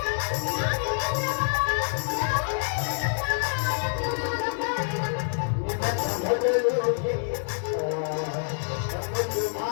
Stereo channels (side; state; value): right; silent; digital silence